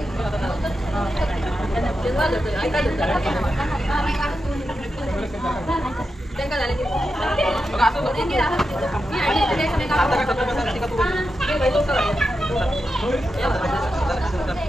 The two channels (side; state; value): both; normal; correlation 0.88